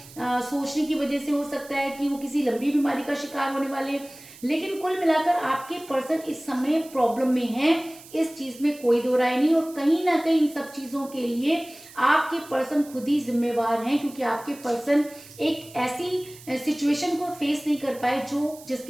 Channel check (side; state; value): right; noise; hiss, 20 dB below the sound